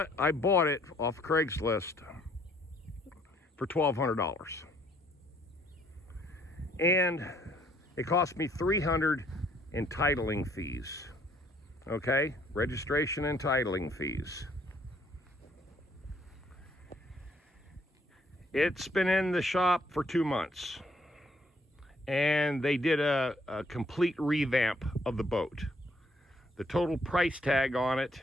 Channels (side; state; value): both; normal; correlation 0.66